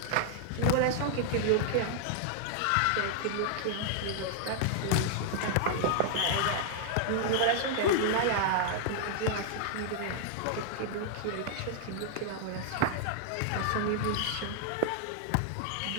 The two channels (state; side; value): different; both; correlation -0.01